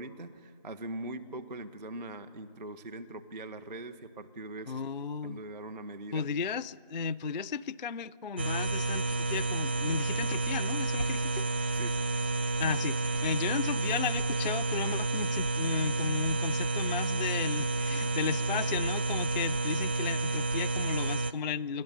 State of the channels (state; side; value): inverted; both; correlation -0.61